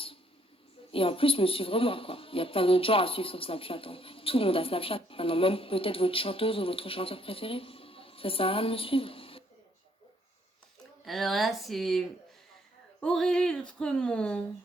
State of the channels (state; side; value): normal; both; correlation 0.68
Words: Et en plus, me suivre moi, quoi. Il y a plein d'autres gens à suivre sur Snapchat. Hein. Tout le monde a Snapchat. Maintenant, même peut-être votre chanteuse ou votre chanteur préféré. Ça sert à rien de me suivre. Alors là, c'est Aurélie Tremont.